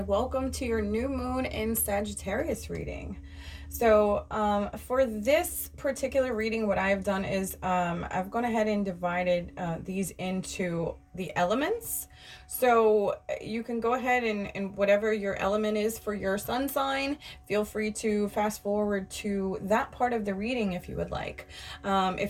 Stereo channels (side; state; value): both; identical; correlation 1.00